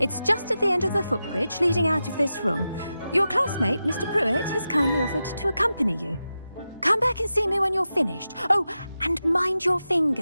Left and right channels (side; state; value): both; inverted; correlation -0.91